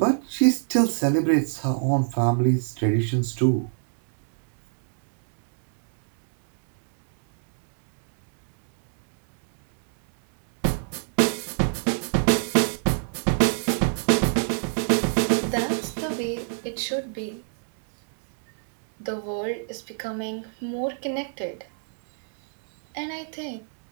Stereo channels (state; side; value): silent; left; digital silence